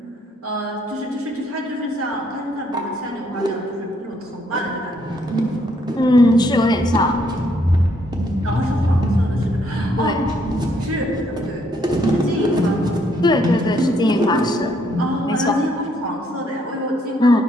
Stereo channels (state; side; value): normal; both; correlation 0.70